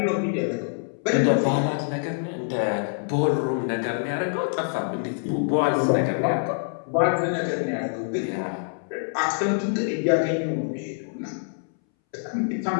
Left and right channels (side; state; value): right; silent; 61 dB below the other